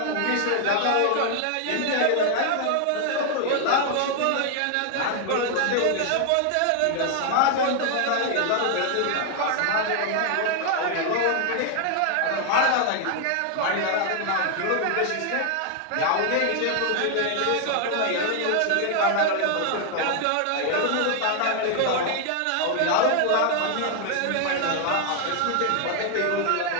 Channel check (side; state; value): both; different; correlation 0.00